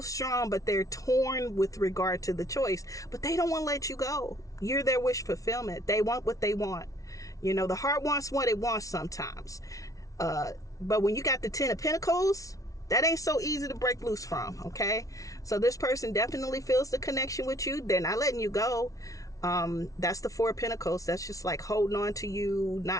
but they're torn with regard to the choice, but they don't want to let you go. You're their wish fulfillment. They want what they want. You know, the heart wants what it wants sometimes, but when you got the 10 of Pentacles, that ain't so easy to break loose from. Okay, so this person definitely feels the connection with you. They're not letting you go. That's the Four of Pentacles. That's just like holding on to you,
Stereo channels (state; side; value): late; right; 0.17 ms